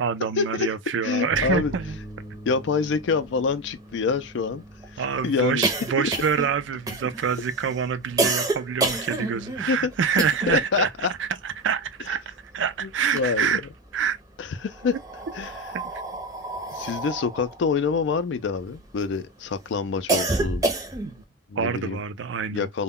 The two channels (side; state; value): both; normal; correlation 0.16